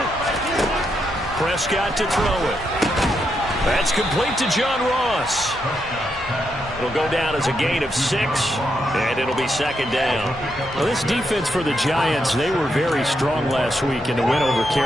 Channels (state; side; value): normal; both; correlation 0.81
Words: Prescott to throw it. That's complete to John Ross. It'll go down as a gain of 6, and it'll be 2nd down. Well, this defense for the Giants, they were very strong last week in the win over